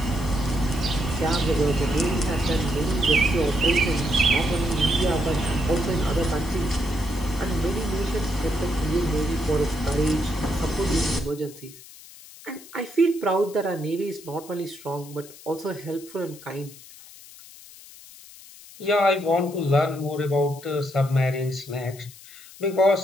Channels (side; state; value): left; noise; hiss, 19 dB below the sound